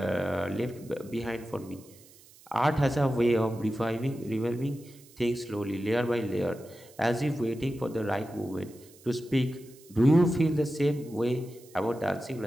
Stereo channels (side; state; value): right; noise; hiss, 24 dB below the sound